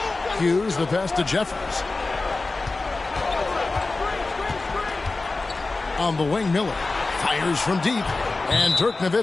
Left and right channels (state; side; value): quieter; right; 3.5 dB